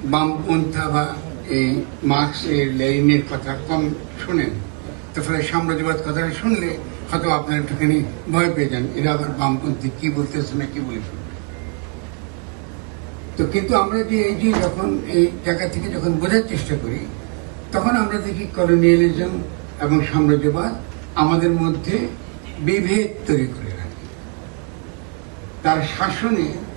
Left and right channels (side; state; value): left; quieter; 34.5 dB